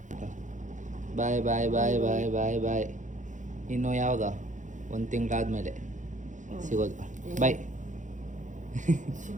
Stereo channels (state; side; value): late; left; 0.36 ms